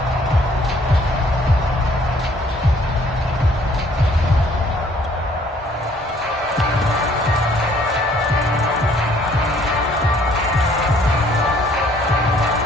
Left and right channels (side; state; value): both; normal; correlation 0.61